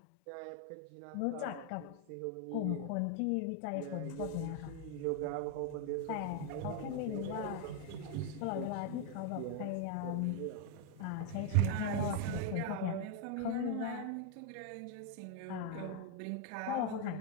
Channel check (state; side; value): different; both; correlation 0.01